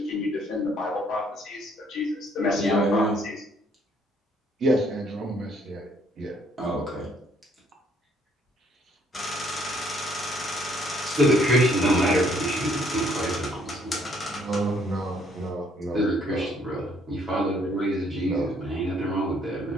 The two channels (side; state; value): both; normal; correlation 0.65